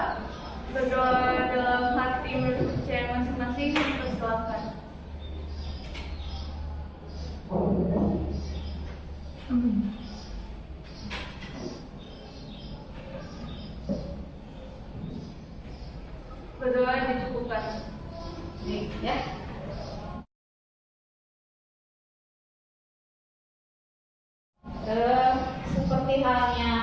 Berdoa dalam hati menurut percaya masing-masing. Persilakan. Berdoa dicukupkan. Nih, ya. Seperti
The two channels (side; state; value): both; identical; correlation 1.00